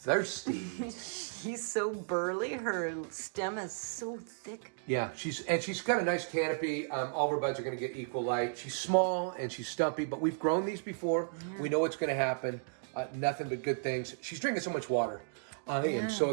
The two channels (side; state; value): left; silent; digital silence